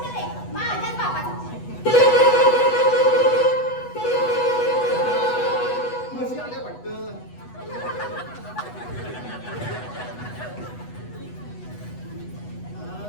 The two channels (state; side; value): late; right; 8.1 ms